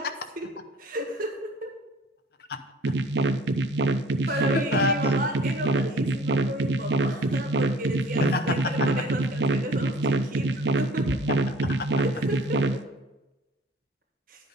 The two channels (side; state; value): both; normal; correlation 0.49